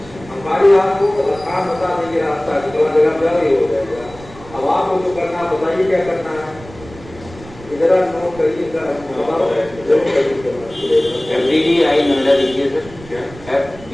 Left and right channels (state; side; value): noise; right; rumble, 19 dB below the sound